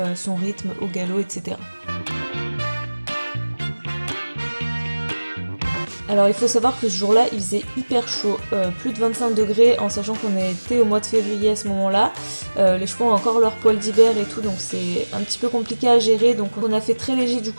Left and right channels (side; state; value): both; inverted; correlation -1.00